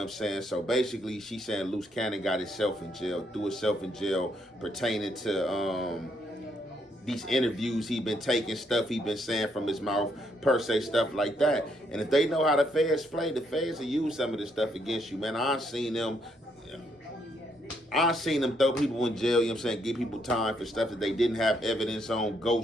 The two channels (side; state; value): both; normal; correlation 0.73